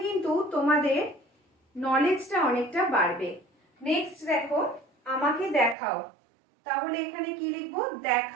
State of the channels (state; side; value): drops out; left; at 5.8 s